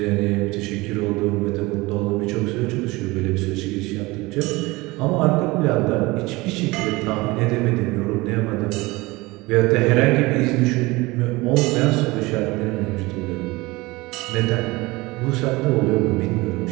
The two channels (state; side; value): quieter; left; 22.0 dB